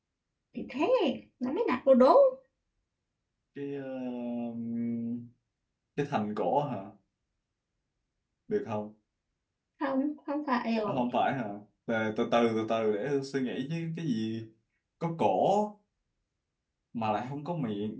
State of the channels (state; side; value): identical; both; correlation 1.00